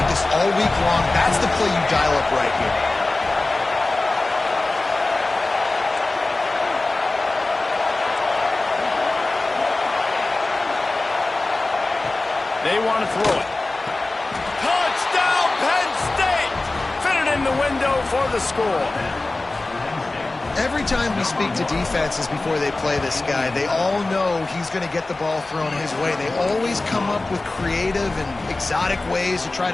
all week long. That's the play you dial up right here. want to throw it. Touchdown, Penn State! Fit it in the window for the score. Every time we speak to defenses before they play this guy, they all know he's going to get the ball thrown his way. They always come up with creative and exotic ways to try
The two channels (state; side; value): quieter; right; 3.1 dB